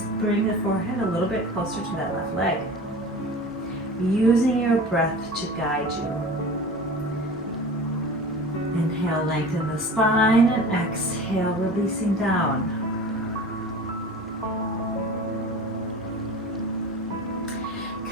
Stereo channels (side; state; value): both; normal; correlation 0.37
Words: bring the forehead a little bit closer to that left leg. Using your breath to guide you. Inhale, lengthen the spine, and exhale, releasing down.